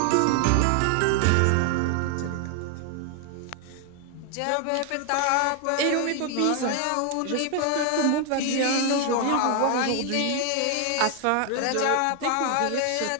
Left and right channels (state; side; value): different; both; correlation 0.00